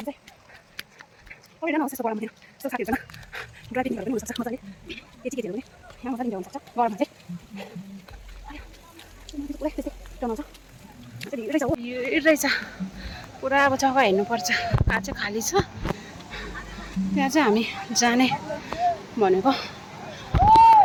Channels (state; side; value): identical; both; correlation 1.00